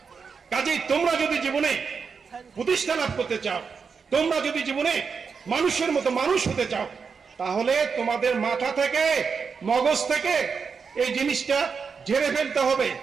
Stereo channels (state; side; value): quieter; left; 5.7 dB